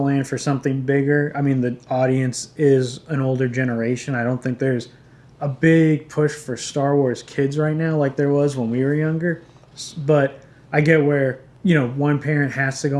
for something bigger. I mean, the audience is an older generation. I don't think there's a big push for Star Wars kids right now like there was when we were younger. But I get where, one parent has to go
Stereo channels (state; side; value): identical; both; correlation 1.00